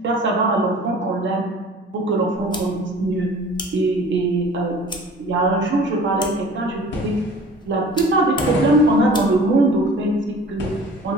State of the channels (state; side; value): normal; both; correlation 0.46